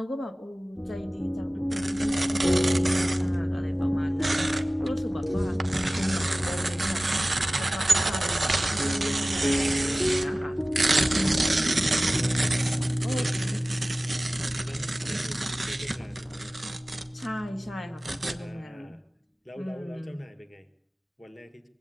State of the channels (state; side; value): normal; both; correlation 0.97